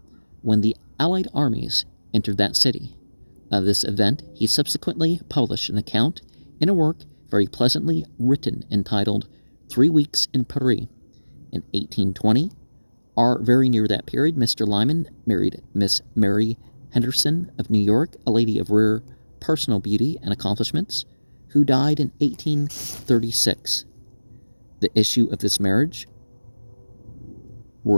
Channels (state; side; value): inverted; both; correlation -1.00